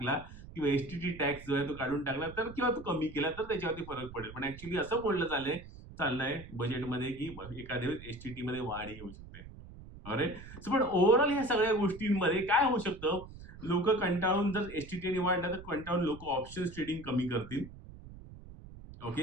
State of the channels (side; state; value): right; noise; rumble, 16 dB below the sound